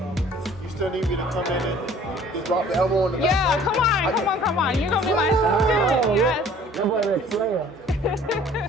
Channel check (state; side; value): normal; both; correlation 0.52